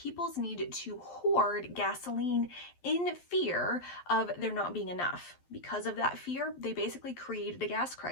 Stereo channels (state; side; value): late; right; 12 ms